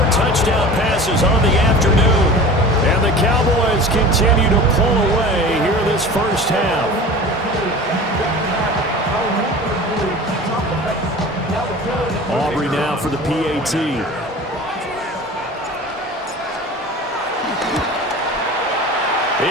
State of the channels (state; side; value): normal; both; correlation 0.38